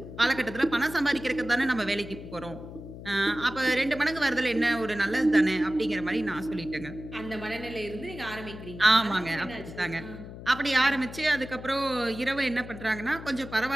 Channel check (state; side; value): noise; left; hum, 13 dB below the sound